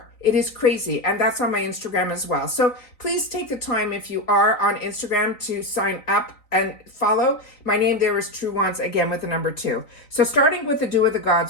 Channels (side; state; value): right; late; 3.9 ms